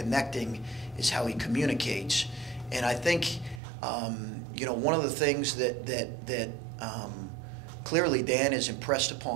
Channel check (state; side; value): drops out; left; at 3.6 s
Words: is how he communicates. And I think, one of the things that clearly Dan has impressed